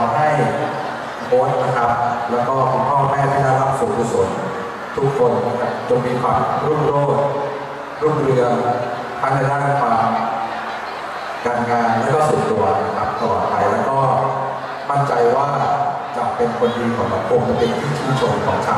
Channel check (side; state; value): both; identical; correlation 1.00